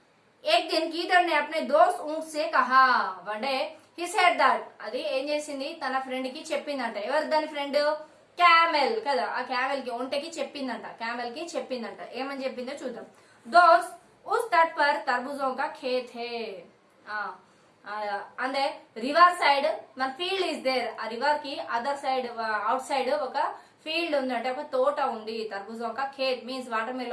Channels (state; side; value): identical; both; correlation 1.00